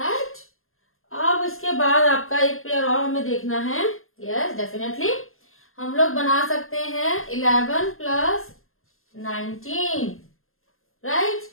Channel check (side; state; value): right; late; 0.61 ms